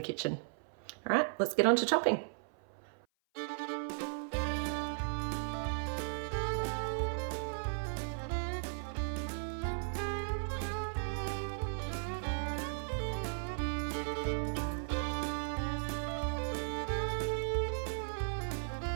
kitchen. All right, let's get on to chopping.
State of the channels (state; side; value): silent; left; 53 dB below the other